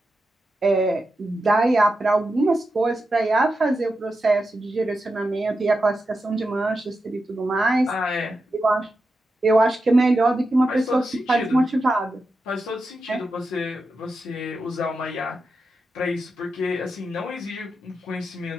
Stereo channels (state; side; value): normal; both; correlation 0.89